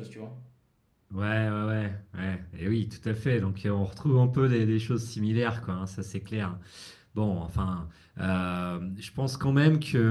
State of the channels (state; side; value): identical; both; correlation 1.00